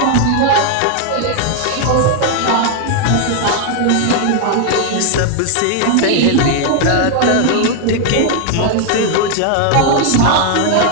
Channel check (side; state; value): both; different; correlation 0.00